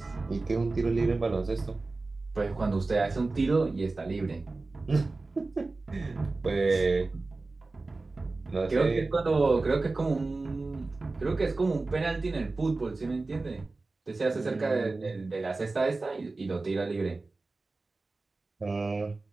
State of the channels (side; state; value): left; quieter; 3.5 dB